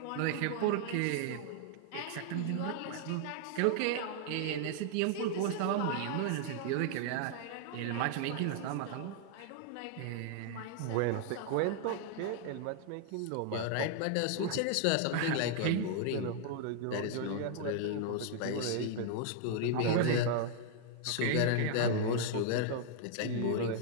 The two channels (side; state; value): both; different; correlation 0.00